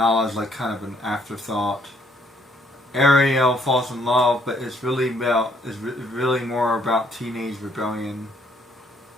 like kind of an afterthought. Ariel falls in love, but it's really more about teenage rebellion.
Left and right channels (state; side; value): normal; both; correlation 0.66